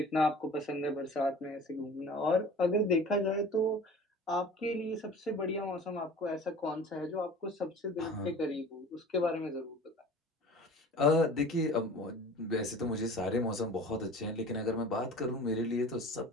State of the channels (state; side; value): normal; both; correlation 0.42